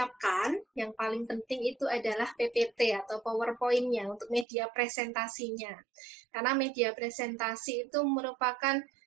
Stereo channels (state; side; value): drops out; left; at 4.5 s